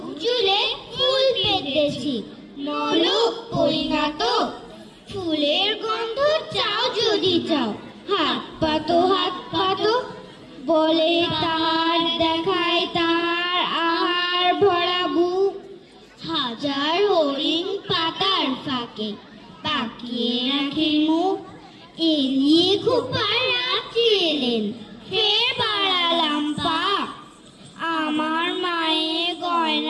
চুলে ফুল পেতেছি নলক পরিণত। ফুলের গন্ধ চাও যদি চাও, হাত পাতো হাত পাতো। বলে তাহার দেখায় তাহার আহার ভরা বুক। হাজার হরিণ পাতার ফাঁকে পাকিয়ে রাখে মুখ। এলিয়ে খোপার রাত্রি এলেন, ফের বাড়ালাম পা। আমার মায়ের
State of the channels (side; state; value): both; identical; correlation 1.00